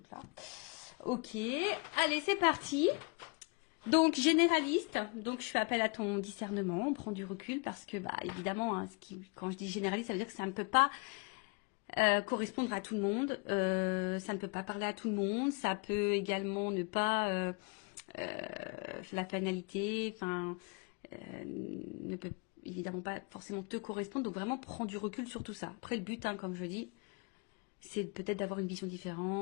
là. Ok, allez, c'est parti. Donc, généraliste, donc je fais appel à ton discernement, on prend du recul parce que, évidemment, quand je dis généraliste, ça veut dire que ça ne peut pas correspondre à tout le monde, ça ne peut pas parler à tout le monde, ça peut également ne pas, la finalité, ne peut évidemment pas forcément te correspondre, donc vraiment prends du recul sur tout ça. Après, le but, comme je dis, c'est peut-être d'avoir une vision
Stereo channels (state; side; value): quieter; right; 30.9 dB